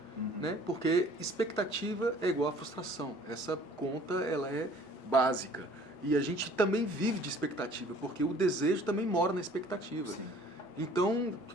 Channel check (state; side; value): normal; both; correlation 0.52